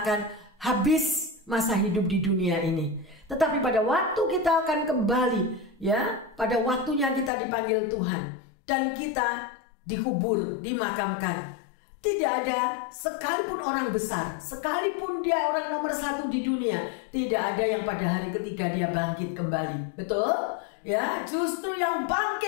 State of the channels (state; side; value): drops out; right; at 7.3 s